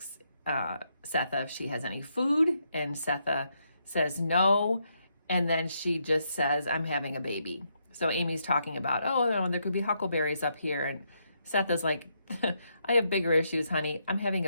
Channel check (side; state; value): both; inverted; correlation -0.78